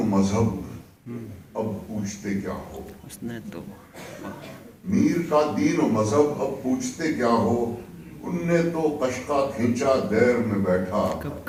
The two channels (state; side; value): identical; both; correlation 1.00